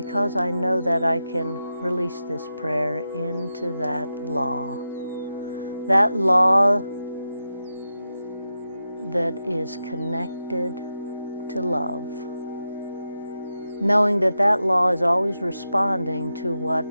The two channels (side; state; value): both; inverted; correlation -0.90